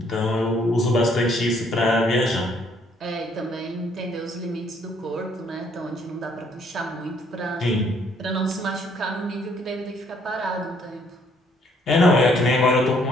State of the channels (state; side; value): normal; both; correlation 0.66